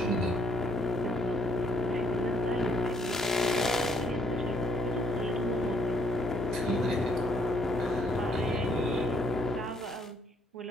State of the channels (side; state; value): both; normal; correlation 0.68